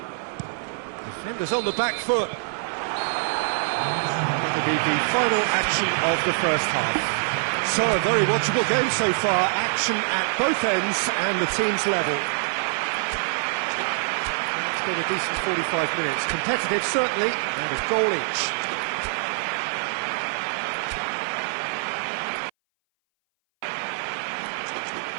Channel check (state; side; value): silent; left; 59 dB below the other